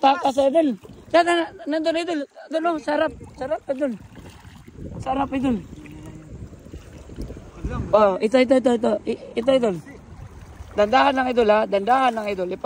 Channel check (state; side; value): identical; both; correlation 1.00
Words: idol. Yan, nandun idol. Idol oh, sarap. Sarap idol. Sarap idol. Oh, ito. Ito idol. Dandahan lang idol ha. Dandahan lang idol.